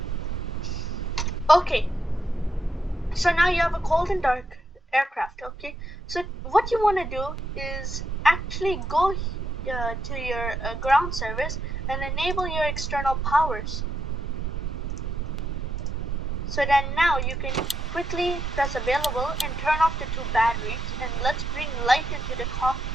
Okay, so now you have a cold and dark aircraft. Okay, so what you want to do is actually go to your ground service and enable your external powers. So then now you can quickly press available and turn off the two batteries, and let's bring light into the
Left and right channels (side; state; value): both; normal; correlation 0.81